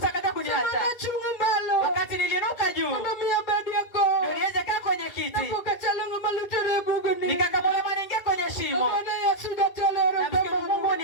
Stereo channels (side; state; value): right; late; 2.0 ms